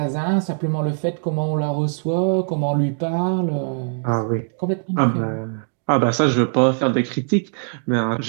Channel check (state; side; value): silent; left; digital silence